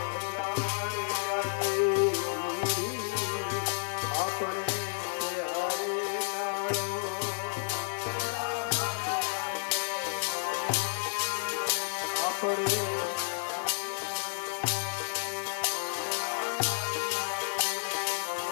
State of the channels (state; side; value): silent; right; 57 dB below the other